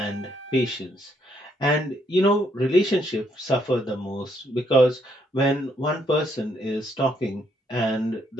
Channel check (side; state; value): both; normal; correlation 0.72